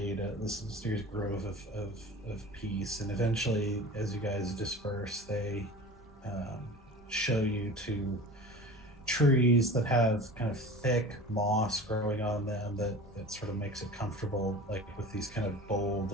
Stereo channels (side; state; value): both; normal; correlation 0.37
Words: this mysterious grove of peace. And eventually, as you guys disperse, they show you to trees that have kind of thick moss growing on them that sort of makes it comfortable, like with these kind of